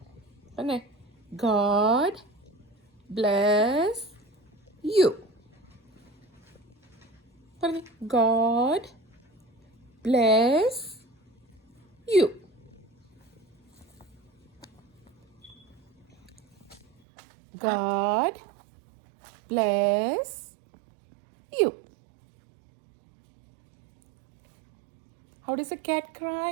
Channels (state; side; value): drops out; left; at 16.9 s